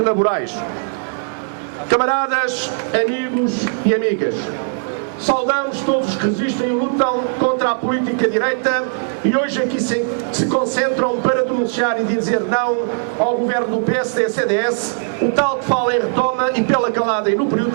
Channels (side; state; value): left; silent; digital silence